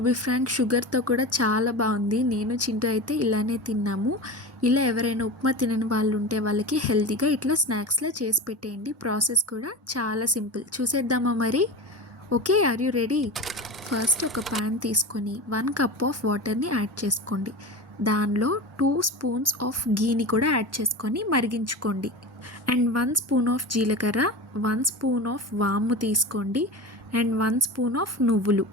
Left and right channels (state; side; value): normal; both; correlation 0.27